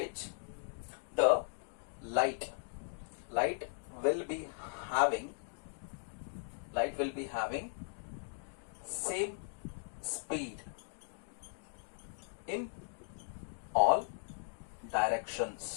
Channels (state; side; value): silent; right; digital silence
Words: the light will be having same speed in all